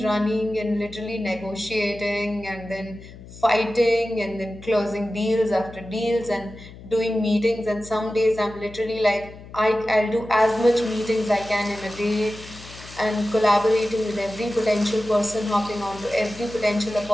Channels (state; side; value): noise; left; hum, 17 dB below the sound